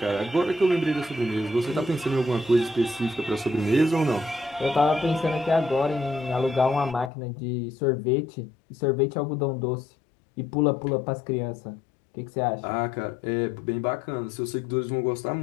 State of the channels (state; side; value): drops out; right; at 7.1 s